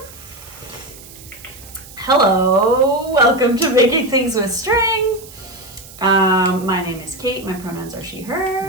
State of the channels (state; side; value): noise; right; hiss, 19 dB below the sound